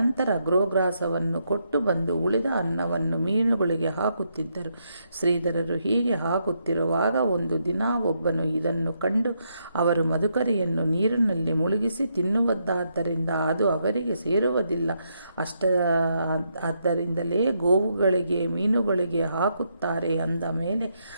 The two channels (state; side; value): inverted; both; correlation -0.78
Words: ಗೋಗ್ರಾಸವನ್ನು ಕೊಟ್ಟು ಬಂದು ಉಳಿದ ಅನ್ನವನ್ನು ಮೀನುಗಳಿಗೆ ಹಾಕುತ್ತಿದ್ದರು. ಶ್ರೀಧರರು ಹೀಗೆ ಹಾಕುತ್ತಿರುವಾಗ ಒಂದು ದಿನ ಒಬ್ಬನು ಇದನ್ನು ಕಂಡು ಅವರು ಮಧುಕರಿಯನ್ನು ನೀರಿನಲ್ಲಿ ಮುಳುಗಿಸಿ ತಿನ್ನುವುದಾದ್ದರಿಂದ ಅದು ಅವರಿಗೆ ಸೇರುವುದಿಲ್ಲ, ಆದ್ದರಿಂದಲೇ ಗೋವುಗಳಿಗೆ ಮೀನುಗಳಿಗೆ ಹಾಕುತ್ತಾರೆ ಅಂದ ಮೇಲೆ